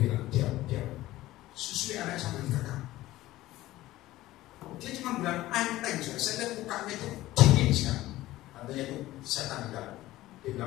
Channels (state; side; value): quieter; right; 16.4 dB